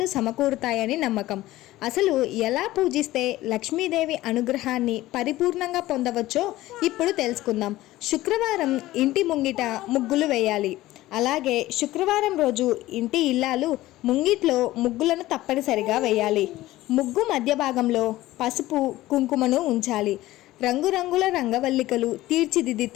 సమకూరుతాయని నమ్మకం। అసలు ఎలా పూజిస్తే లక్ష్మీదేవి అనుగ్రహాన్ని పరిపూర్ణంగా పొందవచ్చో ఇప్పుడు తెలుసుకుందాం। శుక్రవారం ఇంటి ముంగిట ముగ్గులు వేయాలి। అలాగే శుక్రవారం రోజు ఇంటి ఇల్లాలు ముంగిట్లో ముగ్గులను తప్పనిసరిగా వేయాలి। ముగ్గు మధ్య భాగంలో పసుపు కుంకుమను ఉంచాలి। రంగురంగుల రంగవల్లికలు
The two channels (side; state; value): right; quieter; 16.6 dB